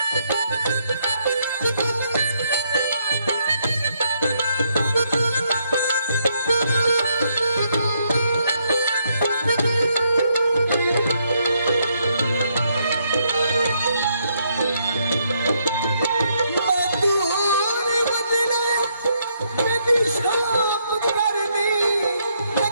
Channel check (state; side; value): inverted; both; correlation -0.75